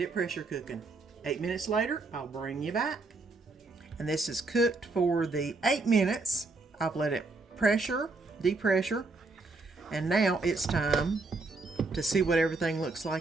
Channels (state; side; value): quieter; left; 3.6 dB